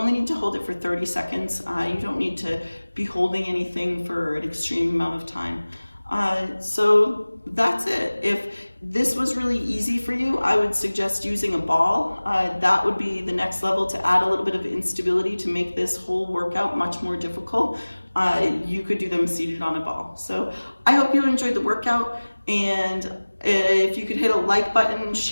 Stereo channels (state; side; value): inverted; both; correlation -1.00